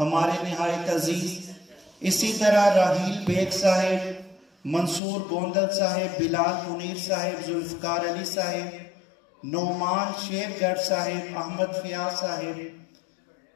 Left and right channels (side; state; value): right; drops out; at 5.0 s